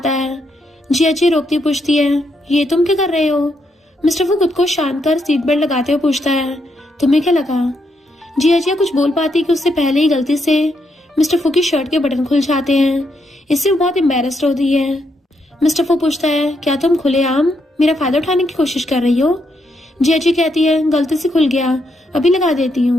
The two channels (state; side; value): normal; both; correlation 0.78